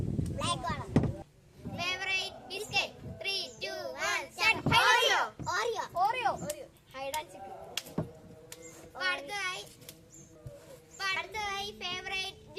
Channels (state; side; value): identical; both; correlation 1.00